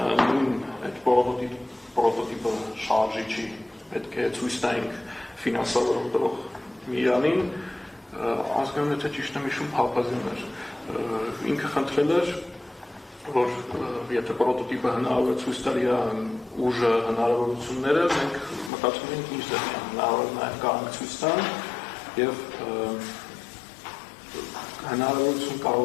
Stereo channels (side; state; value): right; drops out; at 18.7 s